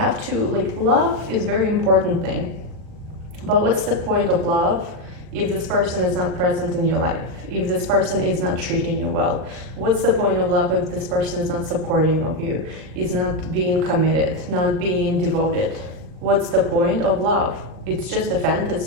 to, like, love is a very important thing. But what's the point of love if this person is not present in your life? If this person is not treating you well? What's the point of love if this person is not supporting of you, is not being committed, not being devoted? What's the point of love? It's just a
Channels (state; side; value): late; left; 39 ms